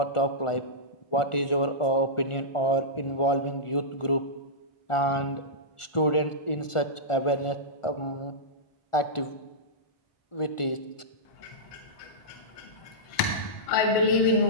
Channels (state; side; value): late; right; 1.4 ms